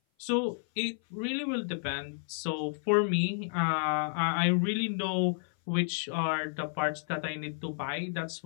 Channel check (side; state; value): right; silent; 55 dB below the other